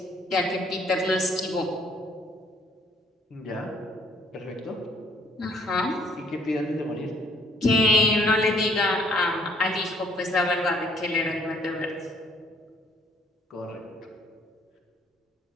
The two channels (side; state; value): both; normal; correlation 0.62